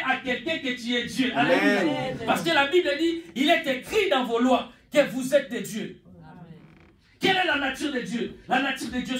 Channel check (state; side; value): identical; both; correlation 1.00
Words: à quelqu'un que tu es Dieu. Alléluia. Amen. Parce que la Bible dit, il est écrit dans vos lois que vous êtes des dieux. Amen. Quelle est la nature de Dieu? La nature de Dieu,